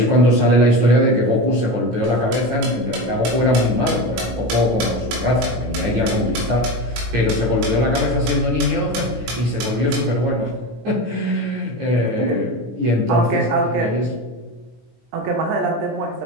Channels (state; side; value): late; left; 17 ms